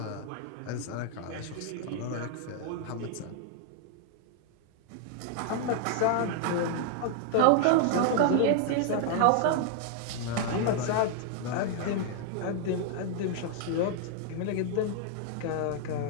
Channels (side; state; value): both; different; correlation 0.00